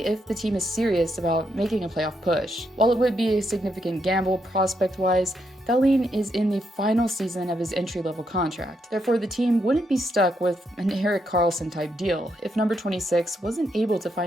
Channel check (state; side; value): normal; both; correlation 0.79